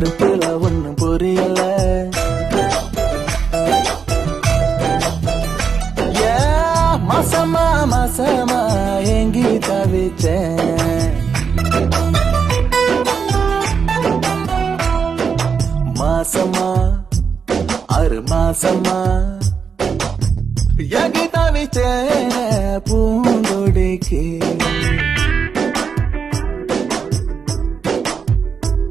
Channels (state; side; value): quieter; left; 6.1 dB